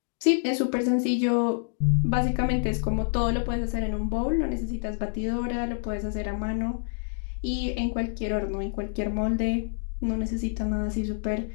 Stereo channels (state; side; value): silent; right; digital silence